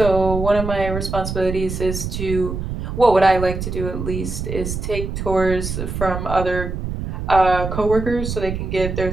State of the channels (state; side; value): noise; right; rumble, 5 dB below the sound